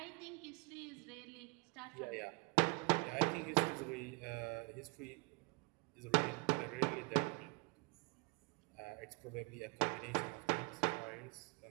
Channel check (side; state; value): left; quieter; 30.7 dB